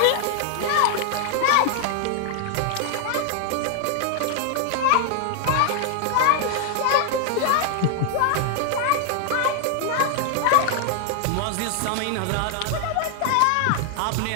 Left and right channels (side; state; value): both; different; correlation 0.00